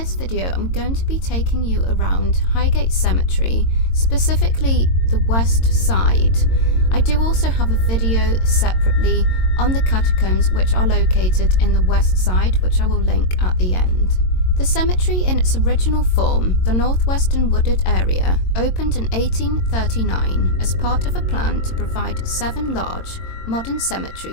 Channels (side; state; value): right; late; 22 ms